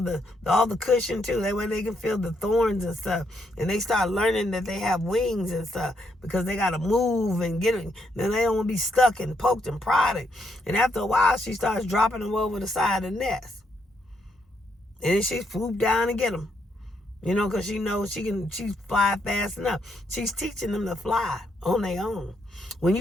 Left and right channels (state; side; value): normal; both; correlation 0.76